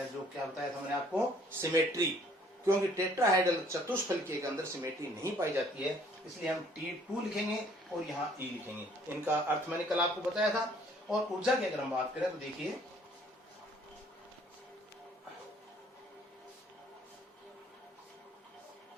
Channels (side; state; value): both; normal; correlation 0.59